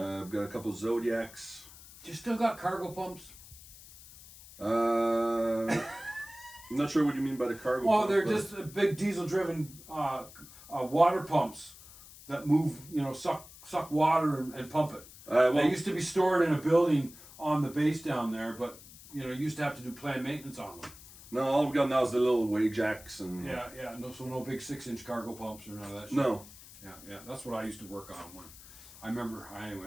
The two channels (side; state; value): left; noise; hiss, 19 dB below the sound